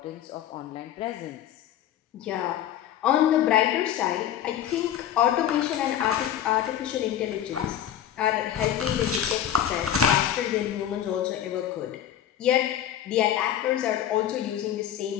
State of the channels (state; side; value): quieter; right; 10.6 dB